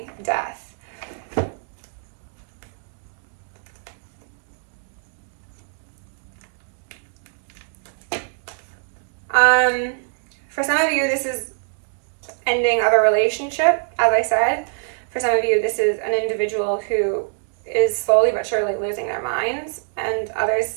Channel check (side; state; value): left; silent; digital silence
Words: Death. For some of you, this is ending of a relationship, as I said. For some of you, this is an individual who is slowly but surely losing their minds. And